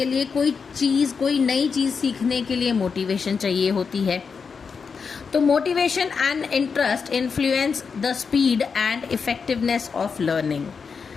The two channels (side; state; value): right; quieter; 5.6 dB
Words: लिए कोई नई चीज़ सीखने के लिए मोटिवेशन चाहिए होती है। तो motivation and interest influence the speed and effectiveness of learning.